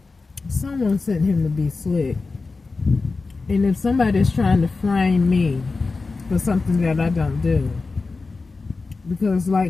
someone sent him to be slick. And if somebody's trying to frame me for something that I don't do, because,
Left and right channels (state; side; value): quieter; right; 4.0 dB